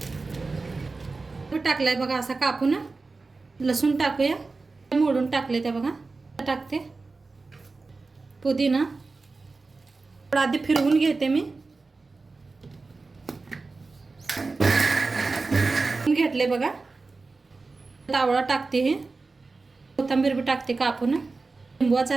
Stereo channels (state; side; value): quieter; left; 3.8 dB